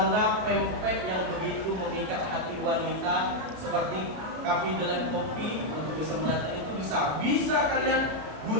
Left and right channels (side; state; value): left; late; 33 ms